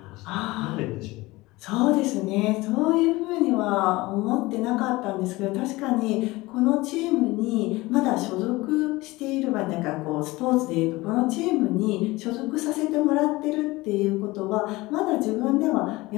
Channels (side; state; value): right; quieter; 20.8 dB